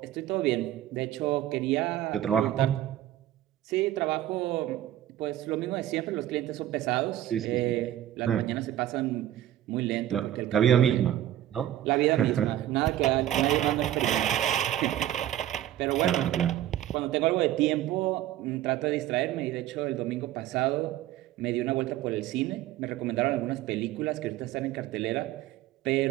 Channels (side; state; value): left; quieter; 12.8 dB